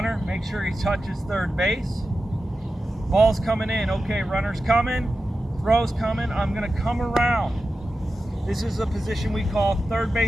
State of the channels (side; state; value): both; normal; correlation 0.92